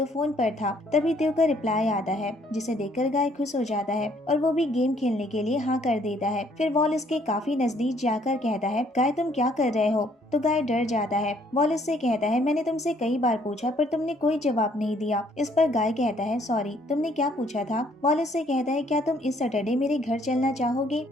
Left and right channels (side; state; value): both; normal; correlation 0.64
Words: फोन पर था। तभी त्यो का रिप्लाई आता है जिसे देखकर गाय खुश हो जाता है और वो भी गेम खेलने के लिए हाँ कर देता है। फिर वॉल इसके काफी नजदीक जाकर कहता है गाय तुम क्या कर रहे हो? तो गाय डर जाता है। वॉल इससे कहता है मैंने तुमसे कई बार पूछा पर तुमने कोई जवाब नहीं दिया। इस पर गाय कहता है सॉरी, तुमने क्या पूछा था? वॉल इससे कहता है क्या तुम इस सैटरडे मेरे घर चलना चाहोगे?